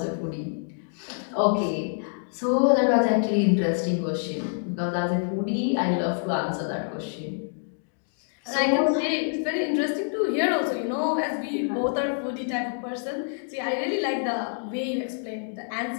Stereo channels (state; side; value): silent; right; 60 dB below the other